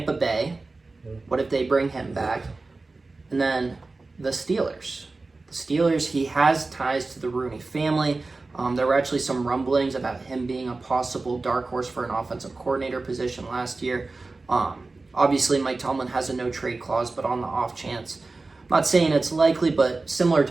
Bay, what if they bring him back? And then the Steelers. The Steelers, he has ties to the Rooney family. There were actually some rumblings about him being a possible dark horse for an offensive coordinator position last year. Obviously, Mike Tomlin has a no-trade clause, but on the off chance, I'm not saying it's likely, but similar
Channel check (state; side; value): quieter; left; 3.5 dB